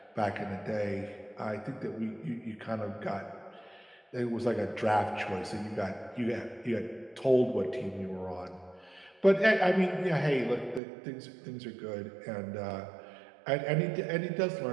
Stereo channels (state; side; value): drops out; left; at 10.8 s